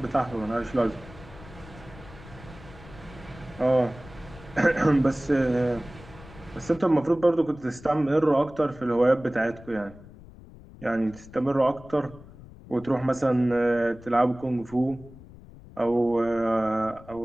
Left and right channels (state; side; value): noise; left; rumble, 19 dB below the sound